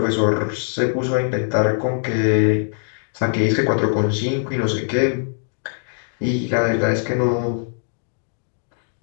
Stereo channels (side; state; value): right; silent; digital silence